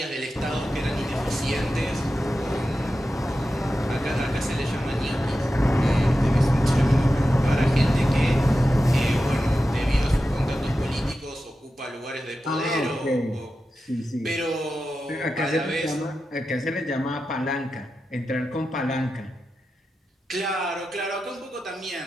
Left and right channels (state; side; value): normal; both; correlation 0.92